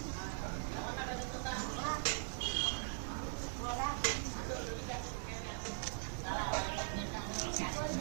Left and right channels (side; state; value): left; silent; digital silence